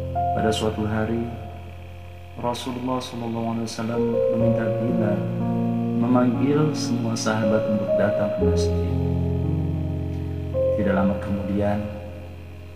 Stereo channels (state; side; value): identical; both; correlation 1.00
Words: Pada suatu hari, Rasulullah SAW meminta Bilal memanggil semua sahabat untuk datang ke masjid. Tidak lama kemudian,